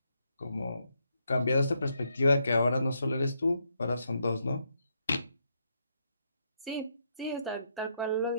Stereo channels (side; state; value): both; inverted; correlation -0.78